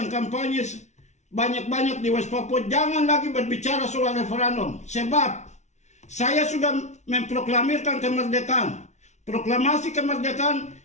kampanye banyak-banyak di West Papua, jangan lagi berbicara soal referendum. Sebab saya sudah memproklamirkan kemerdekaan. Proklamasi kemerdekaan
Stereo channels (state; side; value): late; right; 0.33 ms